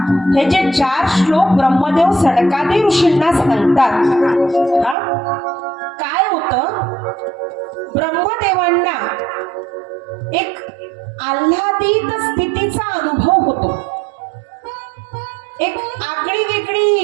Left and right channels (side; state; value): left; drops out; at 5.0 s